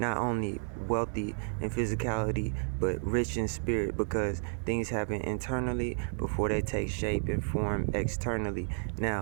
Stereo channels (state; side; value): silent; left; digital silence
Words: only wealthy in physicality but rich in spirit, because things happen internally before they take shape and form externally.